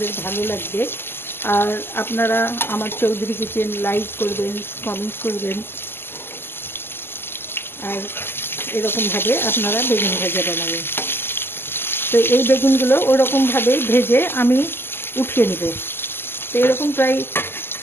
ভালো লাগবে। আর আপনারা আমার চৌধুরী কিচেন লাইক করবেন, কমেন্ট করবেন। আর এরকমভাবে আপনারা বেগুন ভাজা বানাবেন। তো এই বেগুনগুলো ওরকমভাবে ভেজে আমি উঠিয়ে নেব। তো এরকম প্রায়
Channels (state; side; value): late; right; 0.11 ms